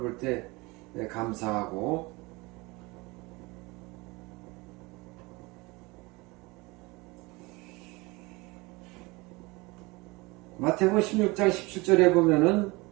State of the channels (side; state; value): left; quieter; 24.2 dB